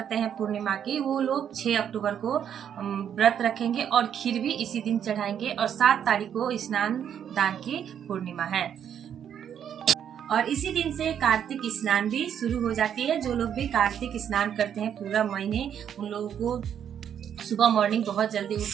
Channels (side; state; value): left; quieter; 8.9 dB